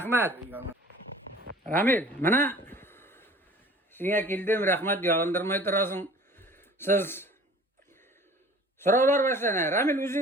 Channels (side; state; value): both; normal; correlation 0.47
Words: Ramil, mana siňe kildim, rahmat, yalındırmay turasın. Siz sorawlar başlana. Ramil